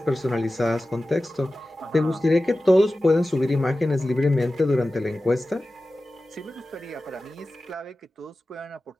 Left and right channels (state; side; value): normal; both; correlation 0.95